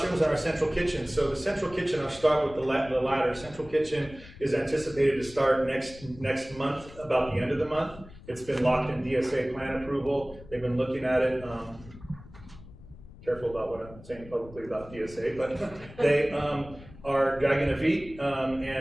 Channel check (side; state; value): left; noise; rumble, 18 dB below the sound